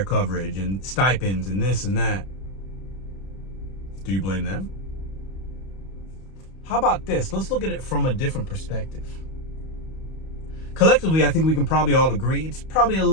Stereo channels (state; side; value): late; right; 31 ms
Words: coverage and stipends and this and that. Do you blame them? How about this? Let's look at it from a different perspective. Collectively, I think we can probably all agree it's probably a